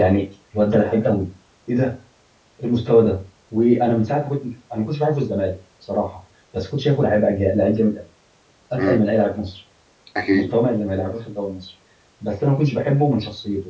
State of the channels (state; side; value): identical; both; correlation 1.00